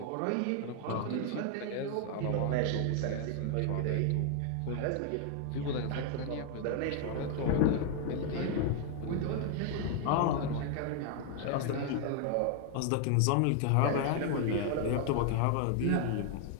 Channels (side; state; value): both; different; correlation 0.00